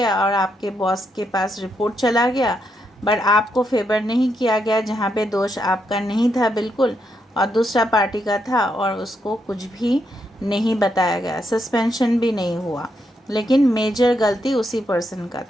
और आपके बॉस के पास रिपोर्ट चला गया, बट आपको फेवर नहीं किया गया, जहाँ पे दोष आपका नहीं था बिल्कुल और दूसरा पार्टी का था और उसको कुछ भी नहीं बताया गया, सस्पेंशन भी नहीं हुआ, लेकिन मेजर गलती उसी पर्सन का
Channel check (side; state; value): both; normal; correlation 0.80